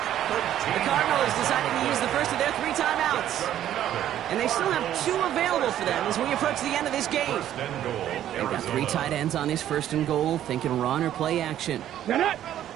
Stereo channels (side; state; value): left; quieter; 11.6 dB